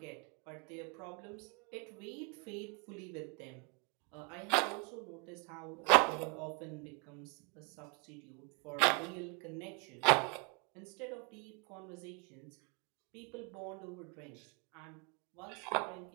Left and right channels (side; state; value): left; quieter; 34.8 dB